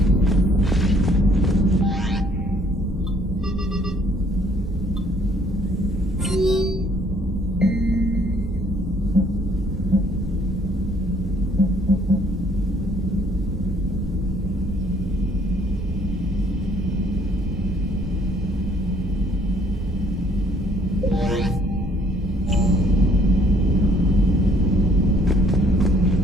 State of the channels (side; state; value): both; normal; correlation 0.62